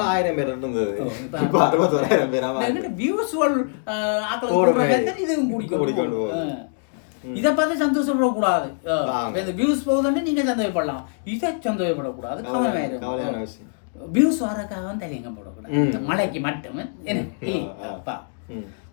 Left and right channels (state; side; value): silent; right; digital silence